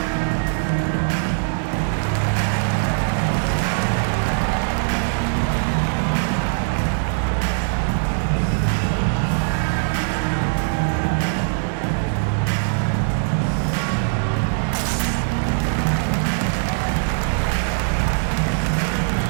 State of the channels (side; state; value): left; silent; digital silence